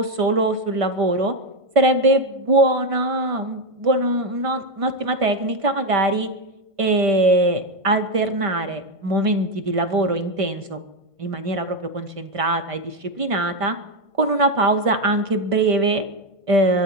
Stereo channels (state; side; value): late; left; 1.5 ms